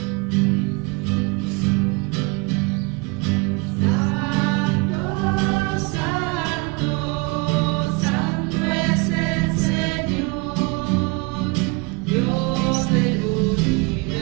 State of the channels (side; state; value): left; quieter; 27.6 dB